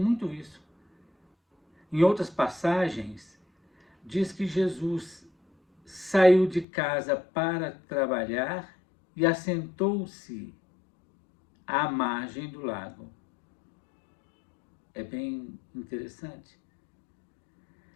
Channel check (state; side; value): drops out; right; at 6.7 s